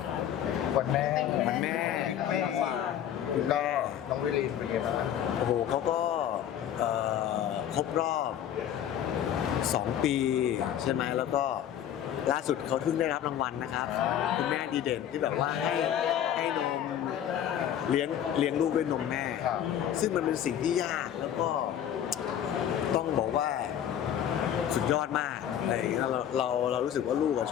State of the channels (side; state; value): right; quieter; 10.2 dB